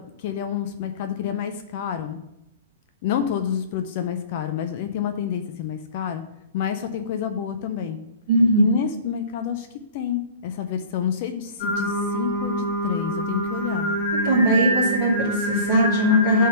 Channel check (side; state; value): both; inverted; correlation -0.40